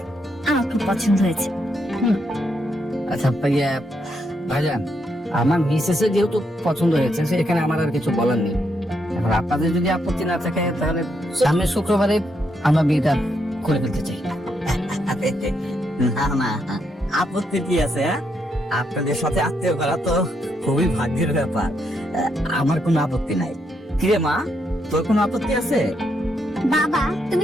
আমার খুব পছন্দ হয়েছে। আচ্ছা ভাইজান, আমার মিসেসের যেহেতু পছন্দ হয়েছে সেখানে আমার আর কিছু বলার নেই। এখন আপনাদের যদি আপত্তি না থাকে তাহলে সামনের শুক্রবারে আমরা বিয়েটা করে ফেলতে চাই। না না, আপত্তি কি আছে? আপনাদের সাথে আত্মীয় করা তো খুবই ভাগ্যের ব্যাপার, আমার কোনো আপত্তি নাই। কিরে মা, তোর কোনো আপত্তি আছে? বাবা তুমি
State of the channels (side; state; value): both; normal; correlation 0.78